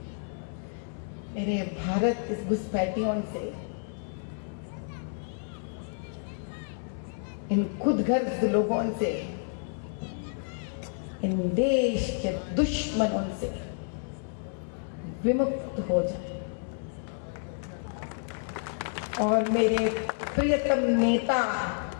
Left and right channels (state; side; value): silent; right; digital silence